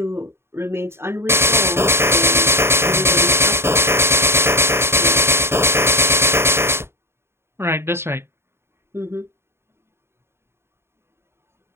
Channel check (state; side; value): late; left; 0.12 ms